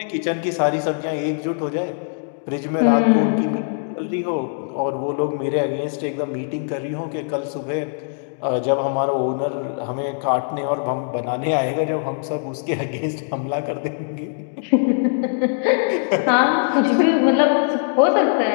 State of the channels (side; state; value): right; silent; digital silence